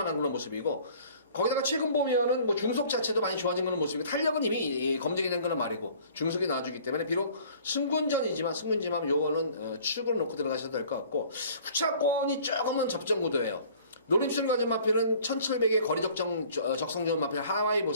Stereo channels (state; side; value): inverted; both; correlation -0.51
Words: 그런 모습이고, 거기다가 최근 보면은 뭐 중속 자체도 많이 좋아진 그런 모습이고 탄력은 이미 검증이 된 거는 말이고 중속이 나와주기 때문에 비록 승군지만 요거는 추격을 놓고 들어가셔도 될 것 같고 후차권이 조금은 접전 구도예요. 노림수를 가진 마필은 1700의 거리 적성 좋은 마필 하와이